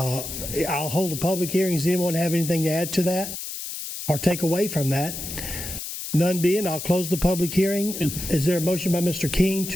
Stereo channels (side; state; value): left; noise; hiss, 7 dB below the sound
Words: hold a public hearing. Does anyone have anything to add to that or take away from that? None being, I'll close the public hearing. Is there a motion by Mr. King